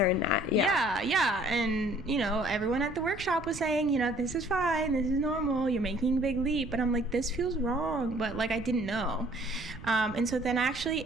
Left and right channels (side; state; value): right; noise; rumble, 15 dB below the sound